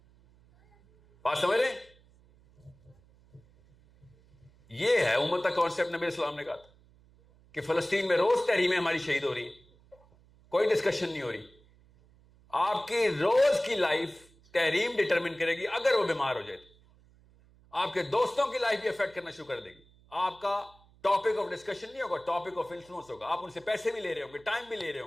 بات سمجھ رہے ہیں؟ یہ ہے امت کا کانسیپٹ. نبی اسلام نے کہا تھا کہ فلسطین میں روز تحریمیں ہماری شہید ہو رہی ہیں, کوئی ڈسکشن نہیں ہو رہی. آپ کی روز کی لائف تحریم ڈٹرمن کرے گی. اگر وہ بیمار ہو جائے تو آپ کے دوستوں کی لائف بھی افیکٹ کرنا شروع کر دے گی. آپ کا ٹاپک آف ڈسکشن نہیں ہوگا, ٹاپک آف انفلوئنس ہوگا. آپ ان سے پیسے بھی لے رہے ہوں گے, ٹائم بھی لے رہے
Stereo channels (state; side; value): noise; right; hum, 28 dB below the sound